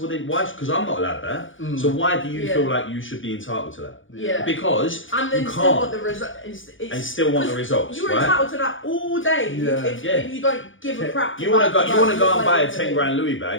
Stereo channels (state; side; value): late; right; 0.57 ms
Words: well then, why? Because I'm not allowed that. So why do you feel like you should be entitled to that? Yeah. Because and then you still can't. want the result. And still want the results, You're right? entitled to that all day if you don't give a crap. You want to go and buy a about 10 grand Louis